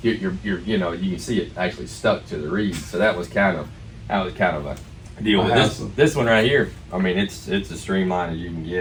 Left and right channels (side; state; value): both; identical; correlation 1.00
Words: can see it actually stuck to the reeds. So that was kind of a deal. But this one right here, it's as streamlined as you can